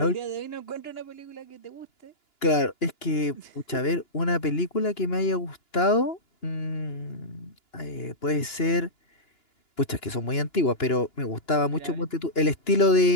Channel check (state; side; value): late; right; 2.9 ms